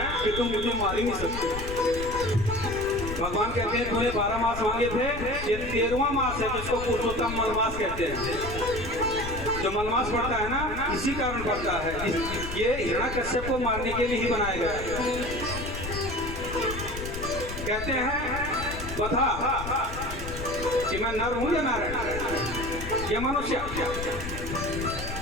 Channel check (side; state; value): left; noise; rumble, 8 dB below the sound